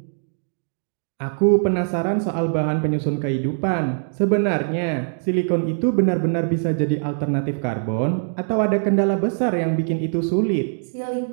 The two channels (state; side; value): silent; left; digital silence